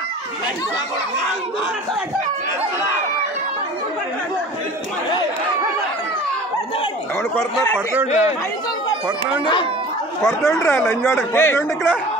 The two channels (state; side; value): normal; both; correlation 0.42